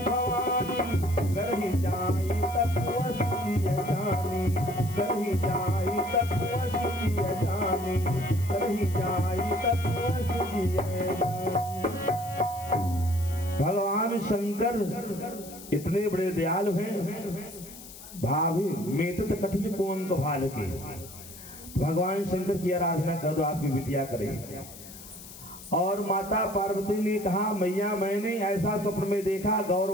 भवानी, करहि जाई तप असलिय जानी। करहि जाई तप असलिय जानी। करहि जाई तप असलिय जानी। भगवान शंकर इतने बड़े दयालु हैं। भाभी मेटत कठिन कोन को भाल के। भगवान शंकर की आराधना कर दो, आपकी बिटिया करे। और माता पार्वती ने कहा, मैया मैंने ऐसा स्वप्न में देखा, गौर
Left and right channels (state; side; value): noise; left; hiss, 16 dB below the sound